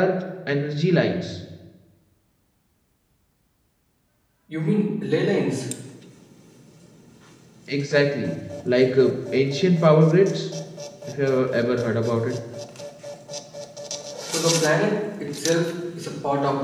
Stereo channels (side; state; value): both; identical; correlation 1.00